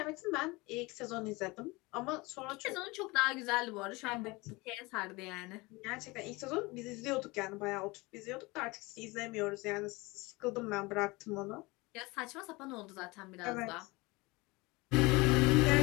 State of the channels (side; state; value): right; quieter; 23.9 dB